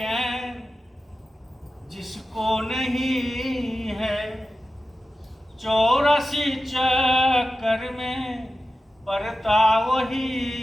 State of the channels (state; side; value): normal; both; correlation 0.93